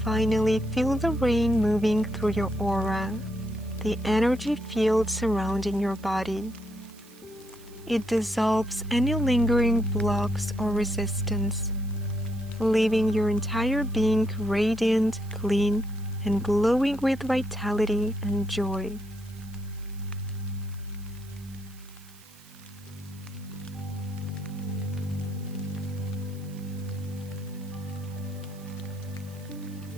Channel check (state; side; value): noise; right; hiss, 24 dB below the sound